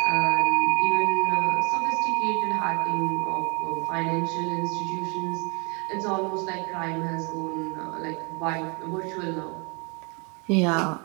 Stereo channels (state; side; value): quieter; left; 32.6 dB